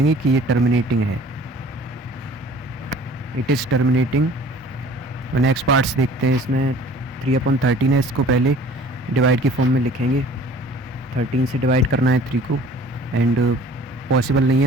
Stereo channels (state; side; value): normal; both; correlation 0.49